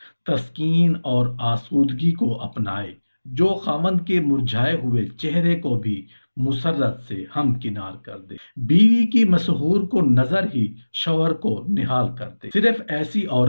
तस्कीन और आसूदगी को अपनाए, जो खामंद के मुरझाए हुए चेहरे को भी मुसर्रत से हमकिनार कर दे। बीवी की मसहूर को नजर ही शौहर को निहाल कर दे। सिर्फ ऐसी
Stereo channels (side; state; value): both; inverted; correlation -1.00